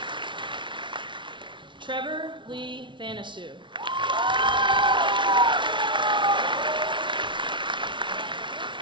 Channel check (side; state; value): left; late; 0.24 ms